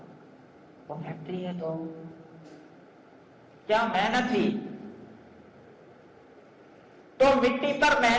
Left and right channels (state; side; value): identical; both; correlation 1.00